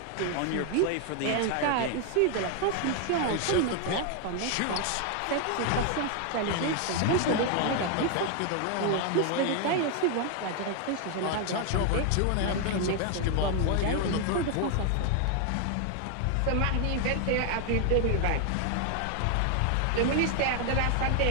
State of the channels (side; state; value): both; different; correlation 0.00